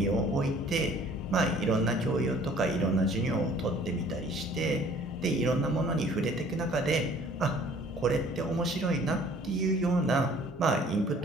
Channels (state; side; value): normal; both; correlation 0.54